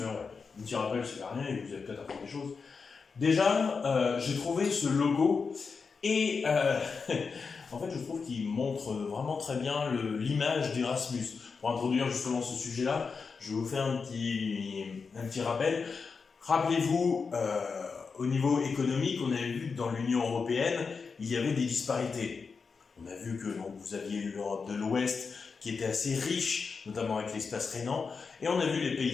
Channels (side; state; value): right; quieter; 5.1 dB